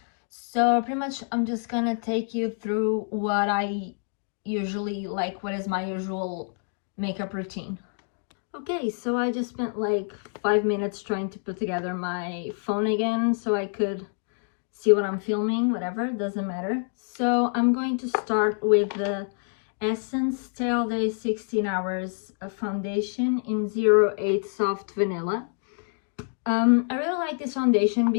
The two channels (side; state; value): right; silent; 60 dB below the other